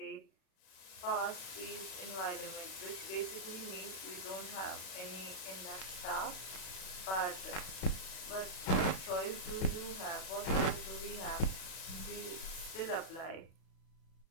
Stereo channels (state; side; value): late; right; 37 ms